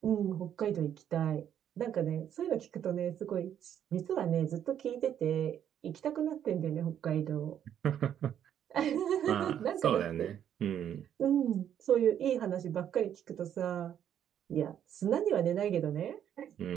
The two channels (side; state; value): left; quieter; 9.7 dB